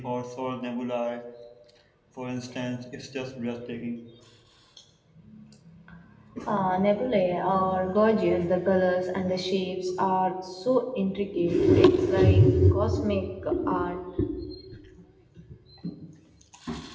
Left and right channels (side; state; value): both; identical; correlation 1.00